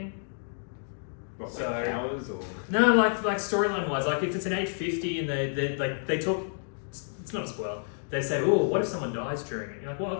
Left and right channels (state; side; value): silent; right; digital silence